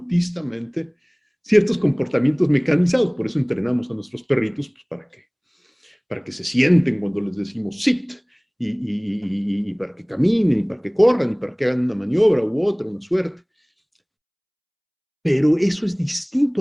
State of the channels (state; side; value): identical; both; correlation 1.00